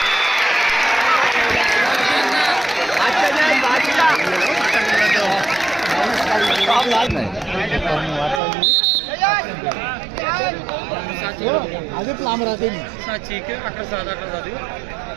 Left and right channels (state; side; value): drops out; left; at 8.4 s